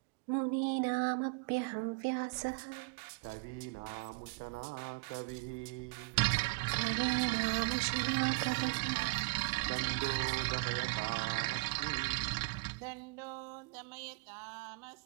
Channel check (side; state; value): left; quieter; 26.3 dB